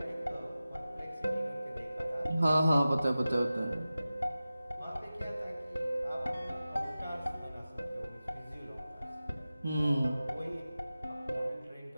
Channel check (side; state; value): both; inverted; correlation -0.95